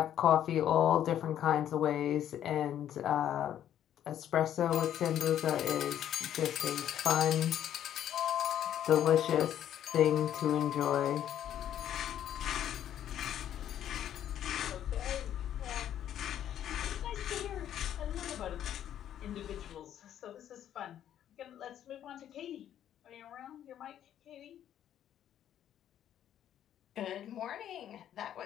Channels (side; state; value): right; quieter; 10.7 dB